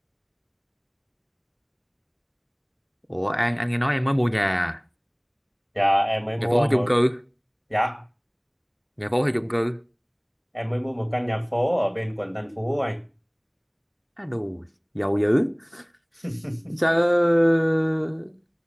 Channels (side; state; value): both; identical; correlation 1.00